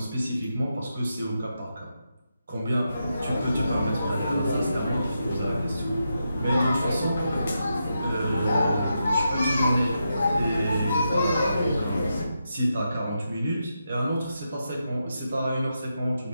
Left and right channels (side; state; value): both; inverted; correlation -0.85